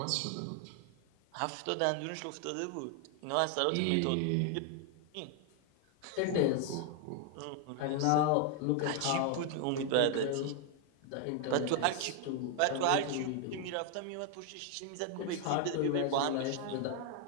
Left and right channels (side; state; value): both; different; correlation 0.00